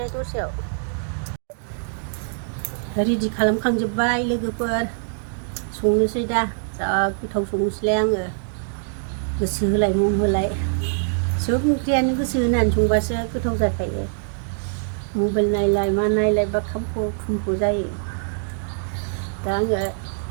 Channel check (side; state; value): left; silent; digital silence